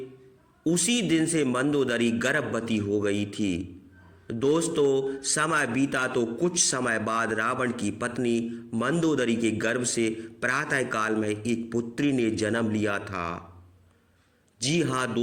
उसी दिन से मंदोदरी गर्भवती हो गई थी। दोस्तों समय बीता तो कुछ समय बाद रावण की पत्नी मंदोदरी के गर्भ से प्रातः काल में एक पुत्री ने जन्म लिया था। जी हाँ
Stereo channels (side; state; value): both; identical; correlation 1.00